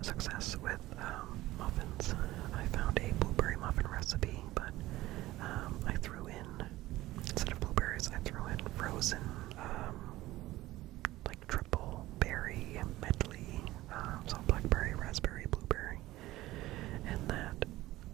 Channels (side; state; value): left; quieter; 16.9 dB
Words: success with muffins. I found a blueberry muffin recipe, but I threw in, instead of blueberries, I threw in frozen, like triple berry medley, so blackberry, raspberry, blueberry, and that